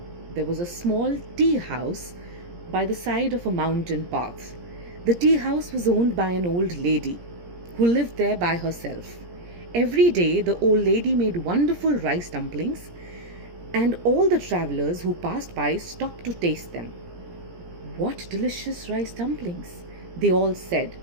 there was a small tea house by the side of a mountain path. The tea house was owned by an old lady who lived there by herself. Every day, the old lady made wonderful rice dumplings, and all the travelers who passed by stopped to taste them. What delicious rice dumplings, they all said,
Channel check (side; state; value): left; late; 17 ms